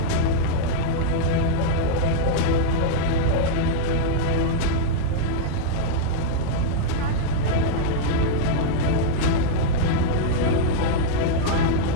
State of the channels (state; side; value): different; both; correlation -0.02